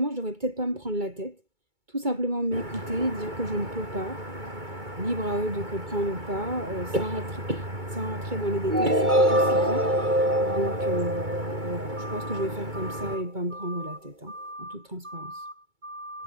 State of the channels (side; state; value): left; late; 2.2 ms